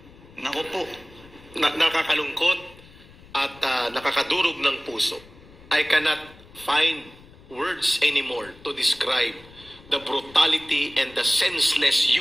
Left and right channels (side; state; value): left; noise; rumble, 23 dB below the sound